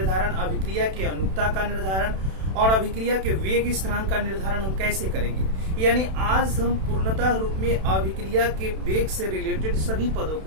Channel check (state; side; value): late; left; 32 ms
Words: अभिक्रिया के अनुक्ता का निर्धारण और अभिक्रिया के वेग स्थिरांक का निर्धारण हम कैसे करेंगे। यानी आज हम पूर्णतः रूप में अभिक्रिया के वेग से रिलेटेड सभी पदों